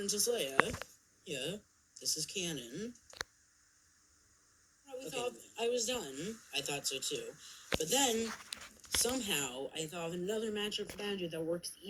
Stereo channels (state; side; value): identical; both; correlation 1.00